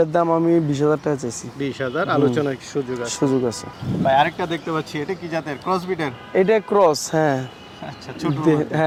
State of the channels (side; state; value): both; identical; correlation 1.00